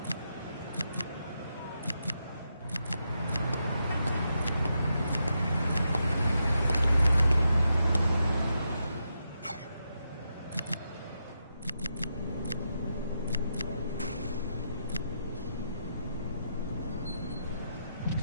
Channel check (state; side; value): inverted; both; correlation -0.84